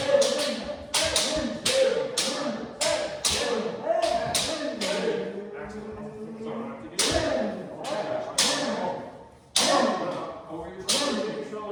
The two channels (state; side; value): identical; both; correlation 1.00